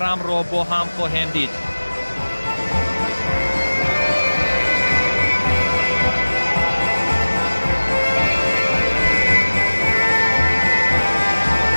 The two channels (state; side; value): inverted; both; correlation -1.00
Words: бо ҳам хоҳем дид.